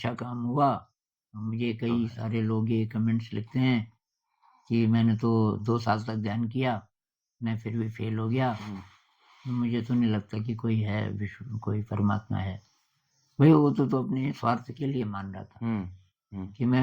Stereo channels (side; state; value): both; identical; correlation 1.00